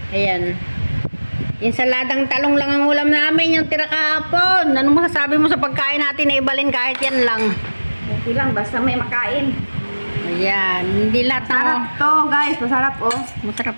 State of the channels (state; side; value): inverted; both; correlation -1.00